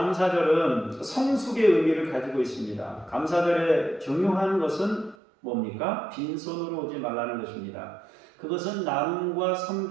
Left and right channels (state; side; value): drops out; left; at 5.2 s